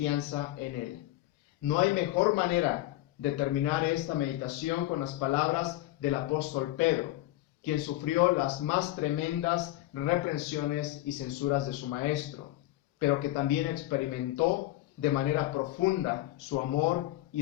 en Él. No hay mejor manera de terminar esta meditación con las palabras del apóstol Pedro, quien sufrió las más tremendas reprensiones y censuras de su maestro, pero que también experimentó de manera profunda su amor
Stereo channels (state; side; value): quieter; right; 16.0 dB